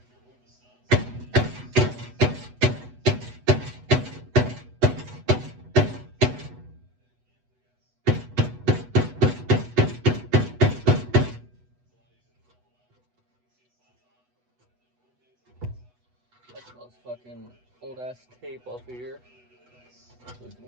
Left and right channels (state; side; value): late; left; 8.1 ms